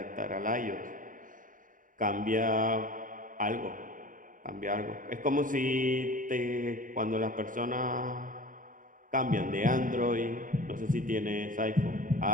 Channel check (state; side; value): late; left; 0.39 ms